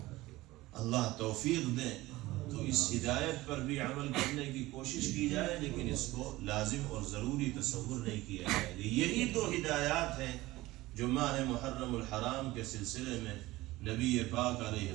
اللہ توفیق دیں تو اس ہدایت پر بھی عمل کرنے کی کوشش کی جائے، لیکن اس کو لازم اور ضروری تصور نہیں کیا جائے گا۔ یہی دو ہدایات ہیں جو ماہ محرم الحرام کے سلسلے میں نبی پاک علیہ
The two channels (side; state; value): left; quieter; 18.6 dB